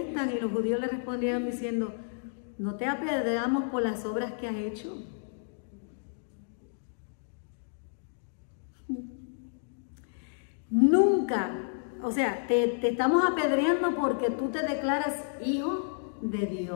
y los judíos le respondieron diciendo, no te apedreamos por las obras que has hecho. Nunca, o sea, te estamos apedreando porque tú te declaras hijo de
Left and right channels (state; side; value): silent; right; digital silence